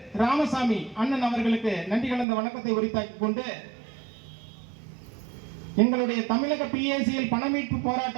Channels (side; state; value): left; drops out; at 2.2 s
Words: ராமசாமி அண்ணன் அவர்களுக்கு நன்றி கலந்த வணக்கத்தை உரித்தாக்கி கொண்டு எங்களுடைய தமிழக பிஏசிஎல் பணமீட்பு